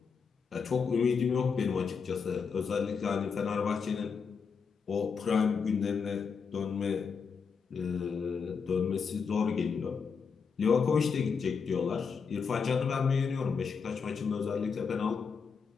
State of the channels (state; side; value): quieter; right; 5.8 dB